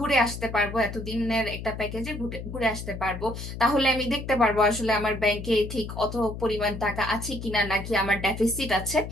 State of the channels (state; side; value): noise; left; hum, 9 dB below the sound